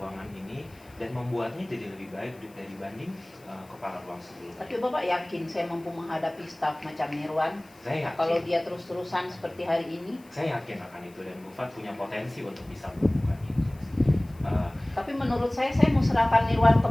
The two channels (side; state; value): left; noise; hiss, 28 dB below the sound